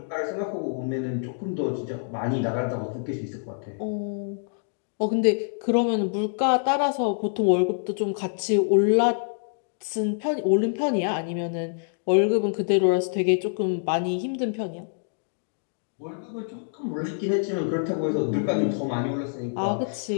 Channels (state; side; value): silent; right; digital silence